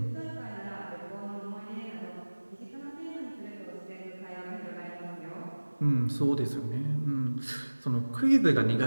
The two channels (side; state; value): both; inverted; correlation -1.00